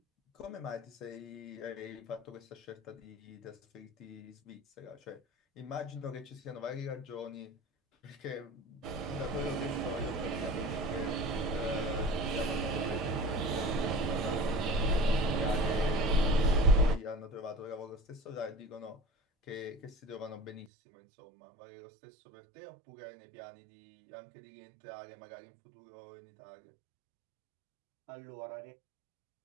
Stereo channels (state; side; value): drops out; left; at 20.7 s